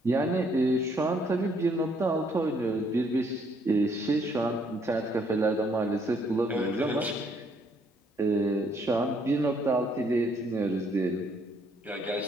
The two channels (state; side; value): normal; both; correlation 0.68